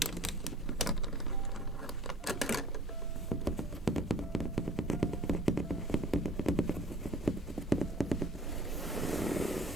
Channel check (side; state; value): both; normal; correlation 0.50